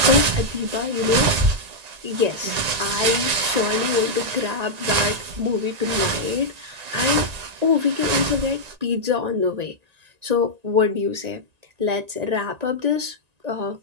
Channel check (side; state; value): left; late; 1.9 ms